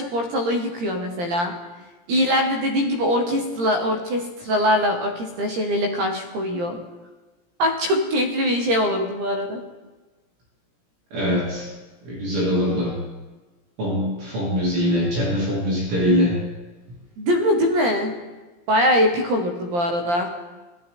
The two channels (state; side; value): late; left; 17 ms